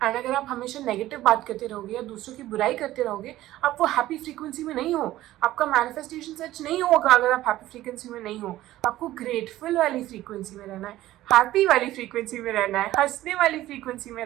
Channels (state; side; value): quieter; left; 15.2 dB